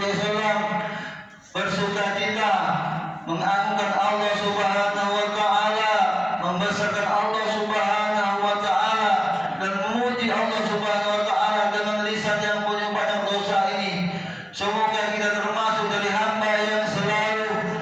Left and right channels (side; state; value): both; identical; correlation 1.00